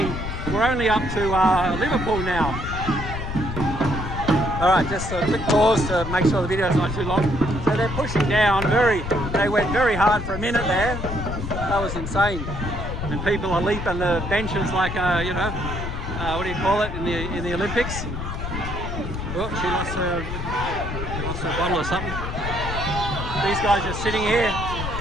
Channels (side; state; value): left; noise; rumble, 5 dB below the sound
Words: up to Liverpool now. All right, just a quick pause to make sure the video's not too long. So they're pushing down they went very hard for a minute there. That was insane. And people are leaping the benches like, you know, what do you call it in the Olympics? Oh, she lost her bottle or something. These guys are sitting here.